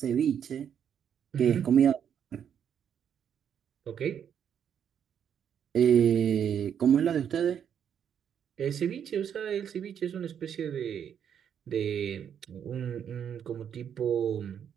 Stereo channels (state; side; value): quieter; left; 8.5 dB